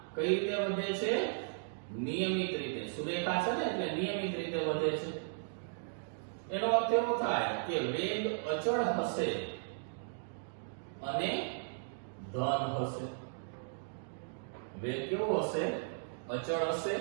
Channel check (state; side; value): silent; left; digital silence